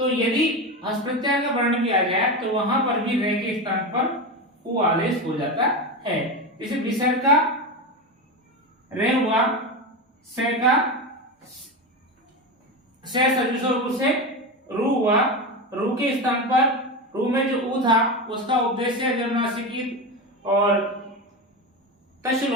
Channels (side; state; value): both; normal; correlation 0.19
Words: यदि हस प्रत्याहार का वर्ण भी आ जाए तो वहां पर भी रे के स्थान पर ऊ आदेश हो जाता है। जैसे विसर्ग का रे हुआ, से का से सजुषो से रू हुआ, रू के स्थान पर रू में जो ऊ था उसका उपदेश जन्मनासिकी और तश